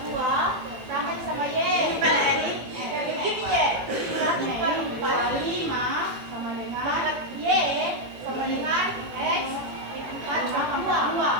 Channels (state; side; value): late; left; 18 ms